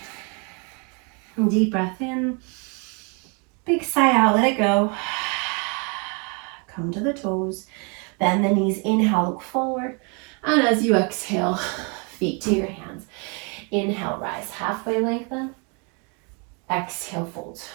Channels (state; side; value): quieter; left; 34.7 dB